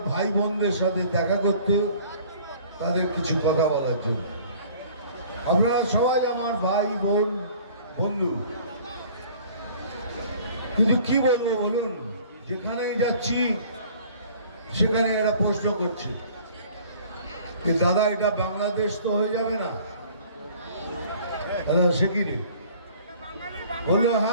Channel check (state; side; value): inverted; both; correlation -0.51